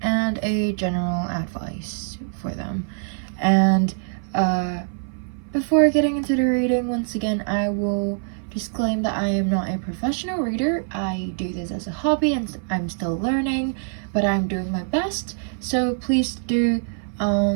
and a general advice for them. And before getting into the reading, once again, I will disclaim that I am not a professional reader. I do this as a hobby and I'm still learning, but I'm doing my best. So please do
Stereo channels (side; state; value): left; silent; 57 dB below the other